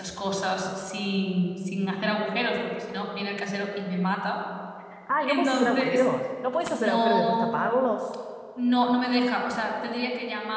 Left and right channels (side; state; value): both; identical; correlation 1.00